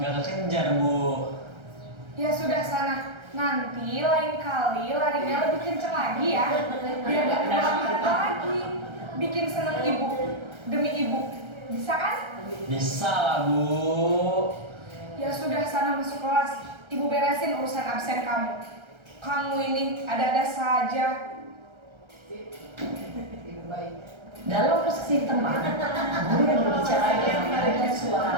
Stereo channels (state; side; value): late; left; 1.3 ms